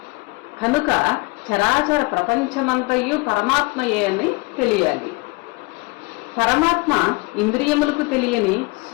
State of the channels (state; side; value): quieter; right; 25.2 dB